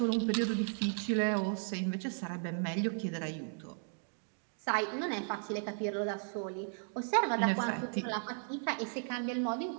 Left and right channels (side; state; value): left; silent; 54 dB below the other